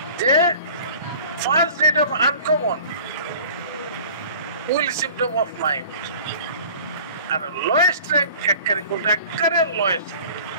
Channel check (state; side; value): inverted; both; correlation -0.46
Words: যে first rate of uncommon will symptom of mind. আর লোয়েস্ট র্যাঙ্ক একবারে কোনটা, একবারে লোয়েস্ট,